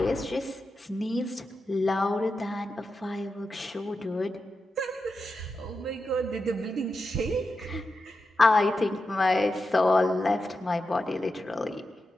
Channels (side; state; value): both; normal; correlation 0.89